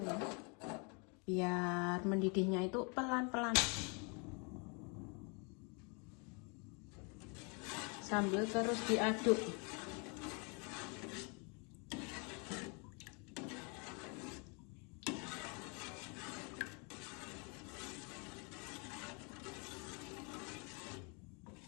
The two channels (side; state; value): right; quieter; 33.9 dB